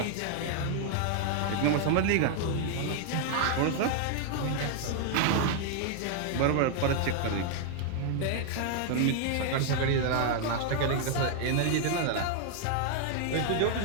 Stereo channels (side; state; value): both; different; correlation 0.00